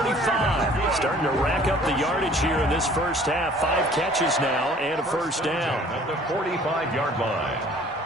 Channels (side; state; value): both; normal; correlation 0.53